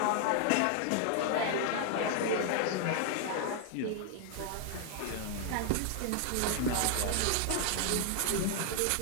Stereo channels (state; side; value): different; both; correlation 0.00